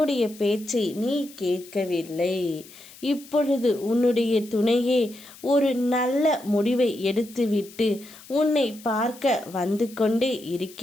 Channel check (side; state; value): left; noise; hiss, 20 dB below the sound